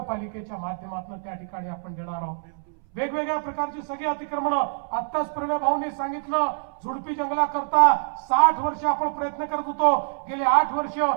माध्यमातून त्या ठिकाणी आपण देणार आहोत। वेगवेगळ्या प्रकारची सगळी अतिक्रमण आत्ताच प्रणय भाऊंनी सांगितलं, झुडपी जंगलाकरता 60 वर्ष आपण प्रयत्न करत होतो। गेले 8 वर्ष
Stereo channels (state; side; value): silent; left; 61 dB below the other